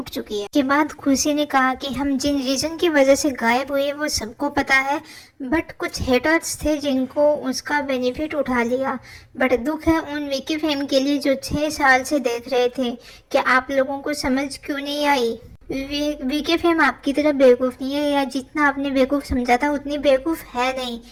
चुकी है। के बाद खुशी ने कहा कि हम जिन रीज़न की वजह से गायब हुए वो सबको पता है, बट कुछ हेटर्स थे जिनको उसका बेनिफिट उठा लिया। बट दुख है उन वीके फैम के लिए जो 6 साल से देख रहे थे। क्या आप लोगों को समझ क्यों नहीं आई? वीके फैम आपकी तरह बेवकूफ़ नहीं है, या जितना आपने बेवकूफ़ समझा था उतनी बेवकूफ़ है नहीं,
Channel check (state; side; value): identical; both; correlation 1.00